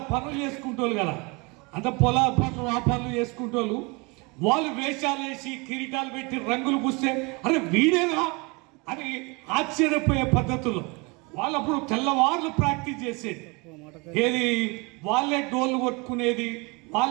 పనులు చేసుకుంటోళ్ళు కదా, అంత పొలాల పనులు ఆ పనులు చేసుకుంటోళ్ళు. వాళ్ళు వేషాలు వేసి కిరీటాలు పెట్టి రంగులు పూస్తే అరే వీడేనా అని ఆశ్చర్యపోయే పద్ధతుల్లో వాళ్ళు అప్పుడు తెల్లవార్లు ప్రాక్టీస్ చేసేది. ఏది వాళ్ళే డోళ్ళు కొట్టుకునేది,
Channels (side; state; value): left; quieter; 28.2 dB